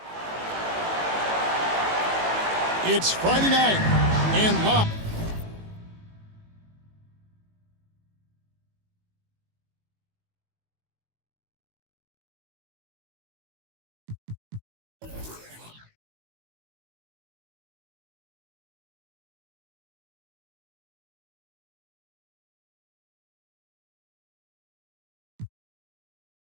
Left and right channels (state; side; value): late; left; 18 ms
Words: It's Friday night and live.